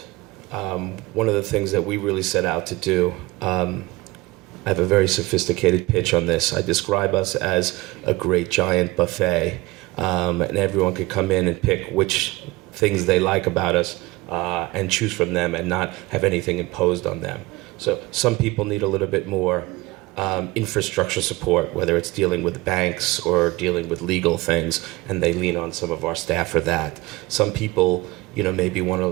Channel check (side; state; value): left; quieter; 21.1 dB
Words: One of the things that we really set out to do, I have a very sophisticated pitch on this. I describe us as a great giant buffet, and everyone could come in and pick which things they like about us and choose from them and not have anything imposed on them. So some people need a little bit more infrastructure support, whether it's dealing with banks or dealing with legal things, and they lean on some of our staff for that. Some people, maybe want